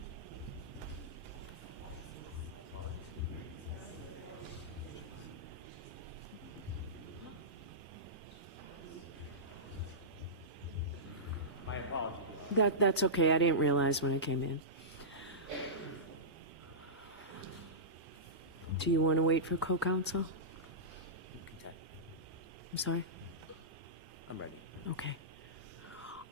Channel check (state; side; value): normal; both; correlation -0.16